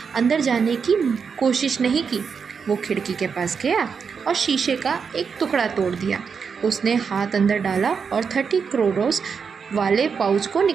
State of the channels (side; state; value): left; quieter; 6.0 dB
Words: अंदर जाने की कोशिश नहीं की। वो खिड़की के पास गया और शीशे का एक टुकड़ा तोड़ दिया। उसने हाथ अंदर डाला और 30 करोड़ों वाले पाउच को